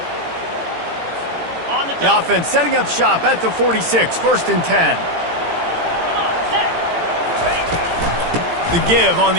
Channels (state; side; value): late; left; 18 ms